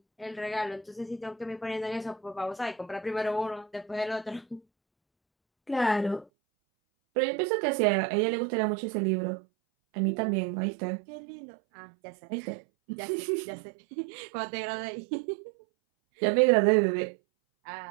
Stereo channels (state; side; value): drops out; left; at 6.2 s